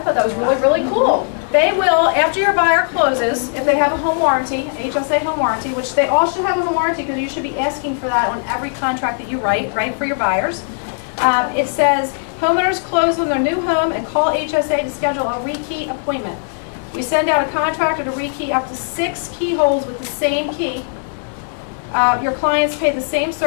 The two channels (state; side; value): silent; right; digital silence